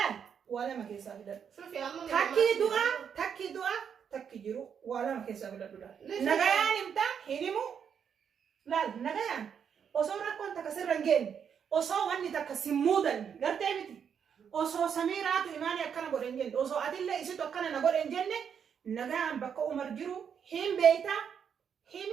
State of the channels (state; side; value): quieter; left; 7.5 dB